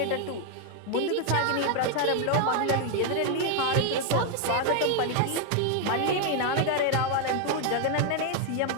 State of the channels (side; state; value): both; different; correlation 0.01